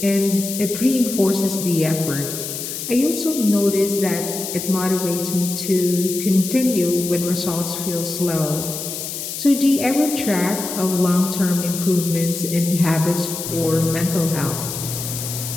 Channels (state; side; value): noise; left; hiss, 6 dB below the sound